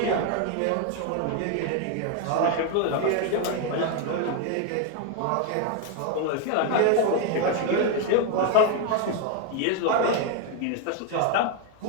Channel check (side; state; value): both; different; correlation 0.01